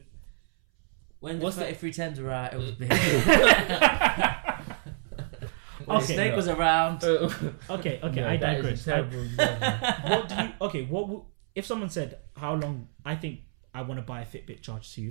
When the 3310s were out, it was big. Okay, Snake was around. Okay, no, I digress. That is a terrible example. If someone said, how long, I think I want to buy a Fitbit Charge 2.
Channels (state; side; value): silent; left; 60 dB below the other